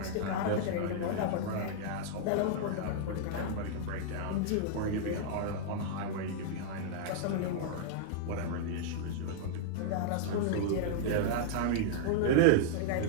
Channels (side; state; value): both; different; correlation -0.01